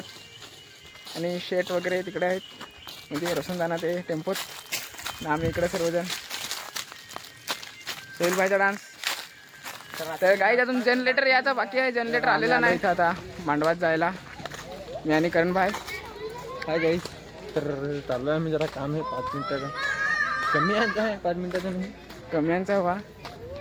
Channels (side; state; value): both; identical; correlation 1.00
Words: आणि शेट वगैरे तिकडे आहेत, म्हणजे रोशन ते टेम्पोत. आम्ही इकडे सर्वजण सोहिल भाईचा डान्स. तर गाईज अजून जनरेटर यायचा बाकी आहे. जनरेटर आलेला नाही आता मांडवात जायला. मी आणि करण भाई. काय गाईज, तर चालू आहे. मी जरा काम आहे 5 मिनिटाचं. कमी यांचा आहे 5 मिनिटाचं नाही, कमी यांचा हवा.